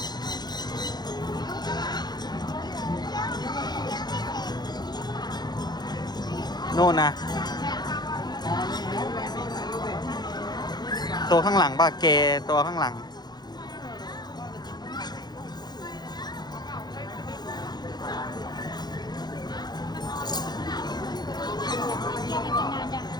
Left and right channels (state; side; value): late; right; 0.20 ms